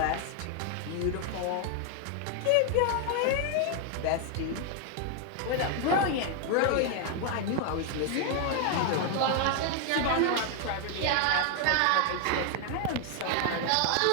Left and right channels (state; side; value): different; both; correlation 0.01